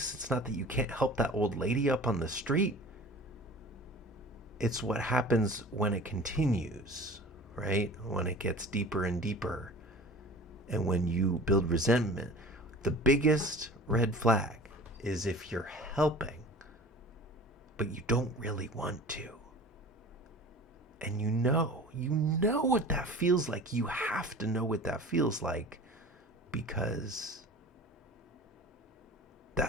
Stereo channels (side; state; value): both; normal; correlation 0.41